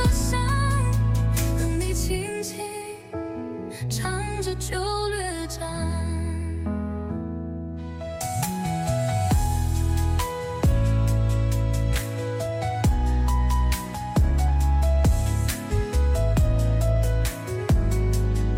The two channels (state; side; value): identical; both; correlation 1.00